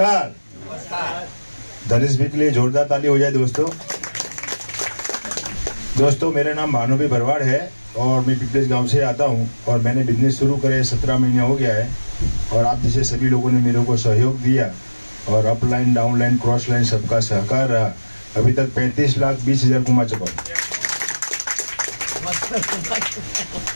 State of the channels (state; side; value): inverted; both; correlation -1.00